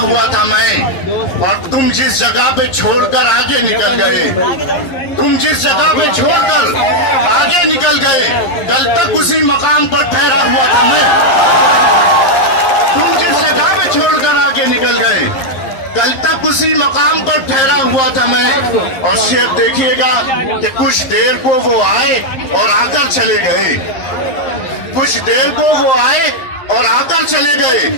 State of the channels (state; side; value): late; right; 11 ms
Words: था मैं। और तुम जिस जगह पे छोड़कर आगे निकल गए, तुम जिस जगह पे छोड़कर आगे निकल गए, कल तक उसी मकाम पर ठहरा हुआ था मैं। तुम जिस जगह पे छोड़कर आगे निकल गए, कल तक उसी मकाम पर ठहरा हुआ था मैं। और शेर देखिएगा कि कुछ देर को वो आए और आकर चले गए, कुछ देर को वो आए और आकर चले गए,